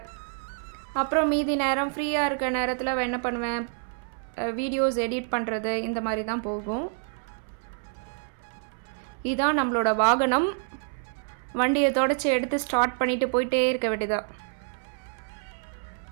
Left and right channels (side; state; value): left; silent; 60 dB below the other